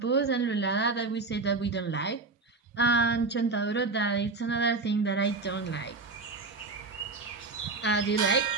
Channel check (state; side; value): quieter; left; 3.8 dB